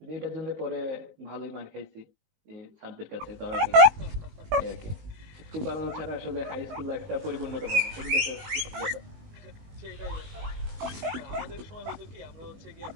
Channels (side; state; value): left; late; 19 ms